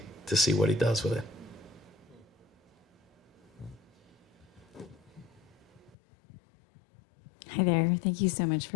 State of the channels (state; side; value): drops out; right; at 6.0 s